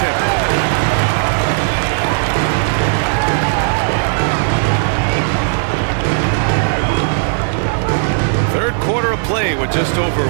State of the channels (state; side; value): silent; left; 63 dB below the other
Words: Third quarter of play with just over